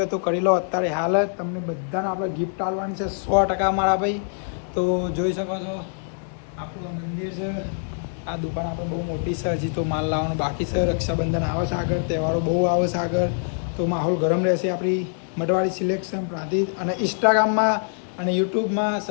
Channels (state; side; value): silent; right; digital silence